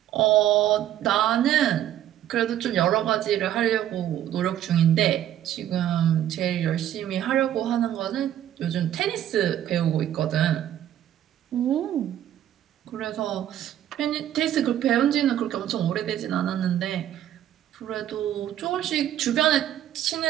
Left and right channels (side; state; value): left; quieter; 11.6 dB